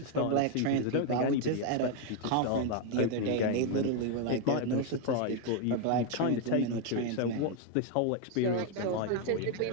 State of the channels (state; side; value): different; both; correlation 0.01